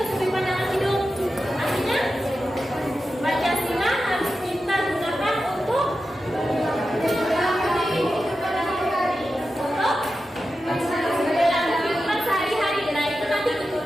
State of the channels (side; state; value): both; normal; correlation 0.91